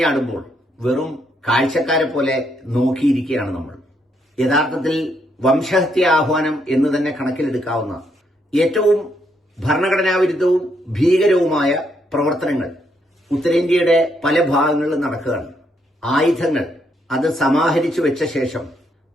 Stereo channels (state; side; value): normal; both; correlation 0.75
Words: വെറും കാഴ്ചക്കാരെ പോലെ നോക്കിയിരിക്കുകയാണ് നമ്മൾ. യഥാർത്ഥത്തിൽ വംശഹത്യ ആഹ്വാനം എന്ന് തന്നെ കണക്കിലെടുക്കാവുന്ന ഏറ്റവും ഭരണഘടനാവിരുദ്ധവും ഭീകരവുമായ പ്രവർത്തനങ്ങൾ ഉത്തരേന്ത്യയുടെ പല ഭാഗങ്ങളിലും നടക്കുകയാണ്. ആയുധങ്ങൾ അത് സമാഹരിച്ചു വെച്ച ശേഷം